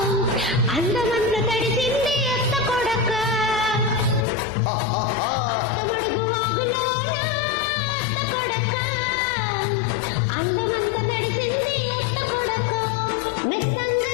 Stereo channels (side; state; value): right; drops out; at 4.2 s